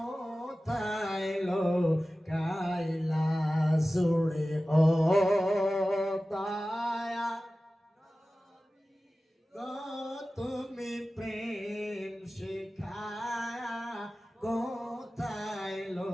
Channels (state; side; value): normal; both; correlation 0.96